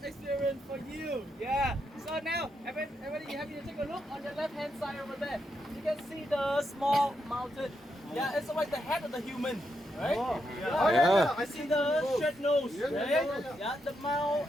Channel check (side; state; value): both; normal; correlation 0.82